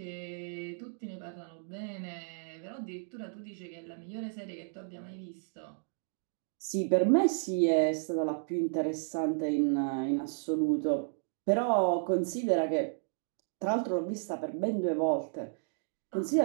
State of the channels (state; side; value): silent; left; digital silence